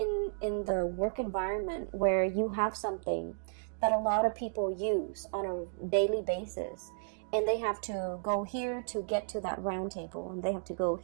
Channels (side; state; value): left; silent; digital silence